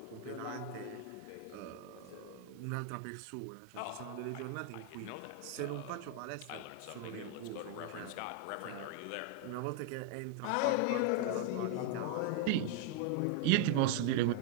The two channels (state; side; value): different; both; correlation 0.00